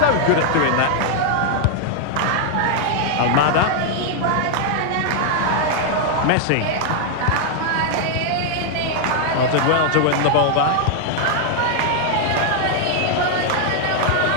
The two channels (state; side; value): different; both; correlation 0.00